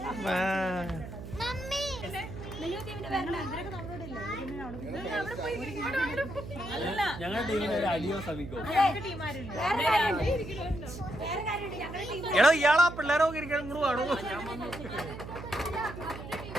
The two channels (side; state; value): right; noise; hum, 10 dB below the sound